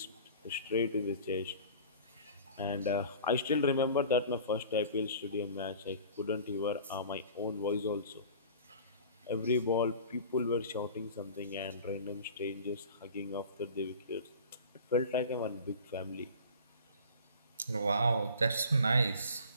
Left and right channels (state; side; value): inverted; both; correlation -0.42